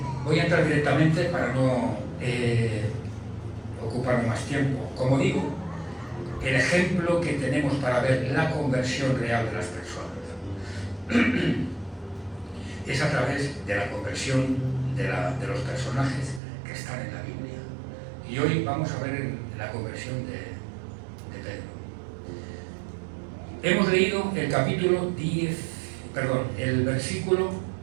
voy a entrar directamente para no ocuparme más tiempo. Como digo, el ejemplo que tenemos para ver la conversión real de las personas es a través de la conversión de los personajes que están en la Biblia. Y hoy vamos a ver la conversión de Pedro. Hemos leído el capítulo el versículo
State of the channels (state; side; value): drops out; left; at 16.4 s